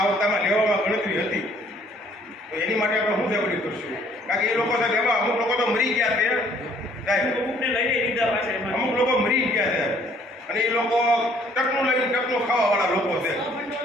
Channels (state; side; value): normal; both; correlation 0.60